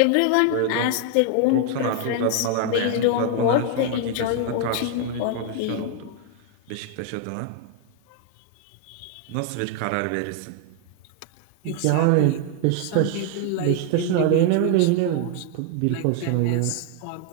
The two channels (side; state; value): both; different; correlation 0.00